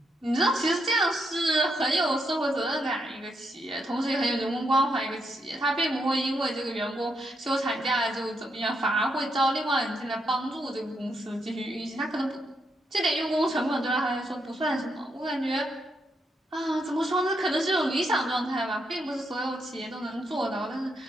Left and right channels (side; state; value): both; normal; correlation 0.79